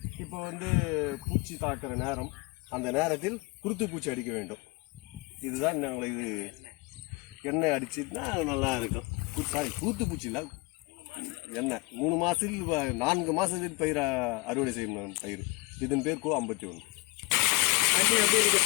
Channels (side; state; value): right; quieter; 25.0 dB